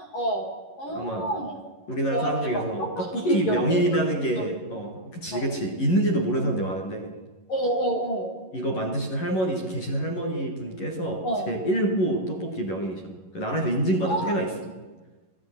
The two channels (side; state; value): right; late; 11 ms